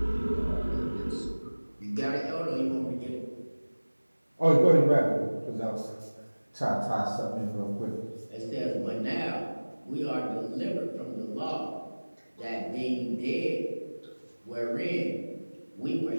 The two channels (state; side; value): inverted; both; correlation -1.00